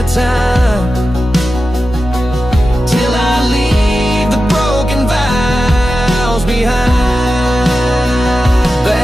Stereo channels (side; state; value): both; normal; correlation 0.92